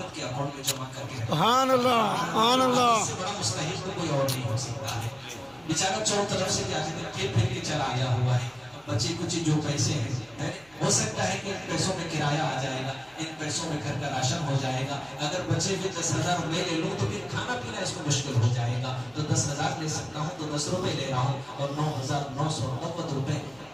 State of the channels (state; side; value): noise; right; hum, 29 dB below the sound